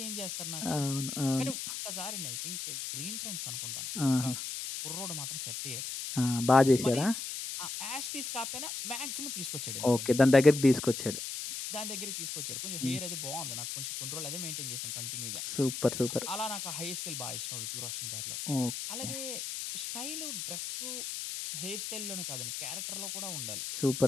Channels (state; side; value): noise; left; hiss, 5 dB below the sound